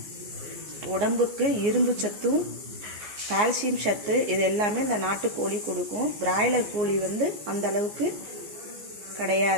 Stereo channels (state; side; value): late; left; 14 ms